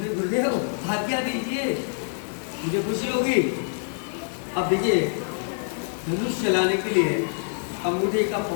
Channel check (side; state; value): right; silent; 61 dB below the other